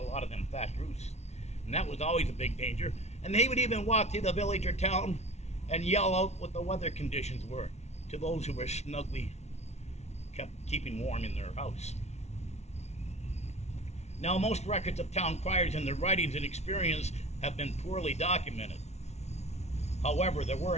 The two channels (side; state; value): right; late; 0.32 ms